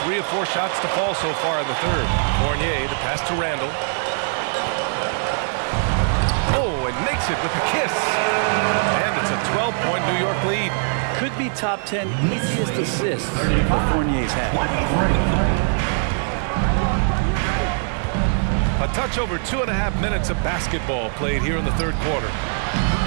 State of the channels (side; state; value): left; silent; 64 dB below the other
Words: 3 of 4 shots to fall so far in the third. Fournier, the pass to Randall. Oh, and makes it with the kiss. And it's a 12-point New York lead. Could be top 10 easiest assists that Fournier's had. A touch over 2.5 minutes of basketball played here in the third quarter.